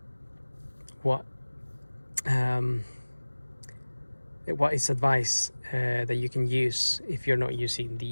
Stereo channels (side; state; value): both; inverted; correlation -1.00